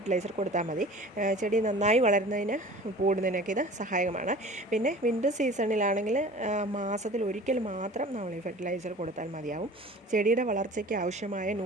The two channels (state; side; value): normal; both; correlation 0.43